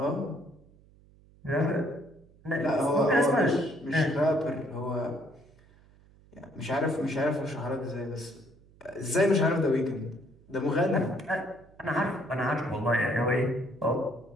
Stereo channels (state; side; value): noise; right; hum, 27 dB below the sound